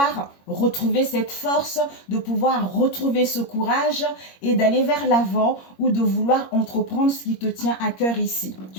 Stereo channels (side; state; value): right; late; 21 ms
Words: retrouver cette force, de pouvoir retrouver ce courage et d'aller vers l'avant ou de vouloir entreprendre ce qui te tient à cœur ici,